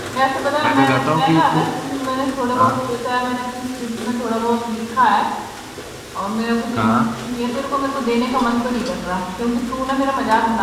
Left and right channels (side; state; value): both; identical; correlation 1.00